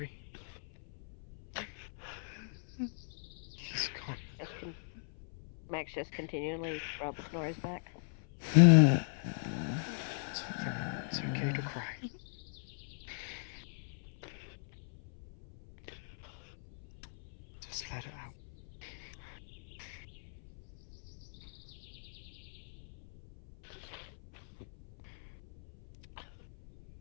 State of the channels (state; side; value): silent; right; 52 dB below the other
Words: He's gone. Max just continually rubs Nori's back. It's okay to cry. Just let it out.